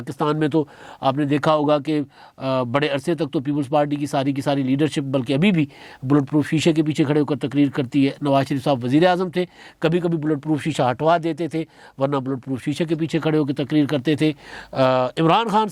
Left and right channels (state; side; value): identical; both; correlation 1.00